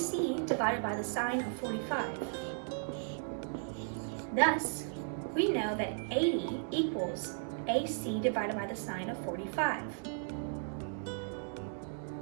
divided by the sine of 45. Thus, we know that 80 equals AC divided by the sine of 45.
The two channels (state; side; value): silent; left; digital silence